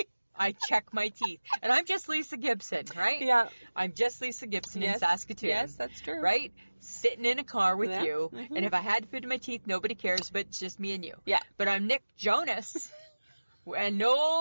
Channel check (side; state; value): both; inverted; correlation -1.00